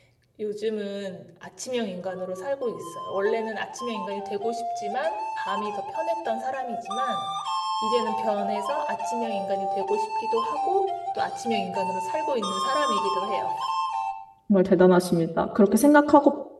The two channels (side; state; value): both; identical; correlation 1.00